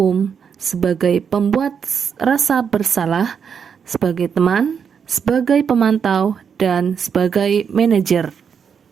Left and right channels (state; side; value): quieter; left; 7.0 dB